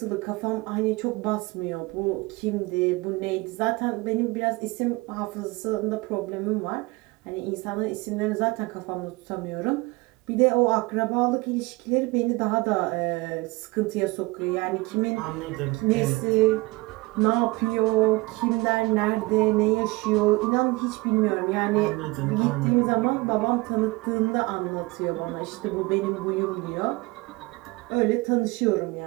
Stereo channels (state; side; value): quieter; left; 23.4 dB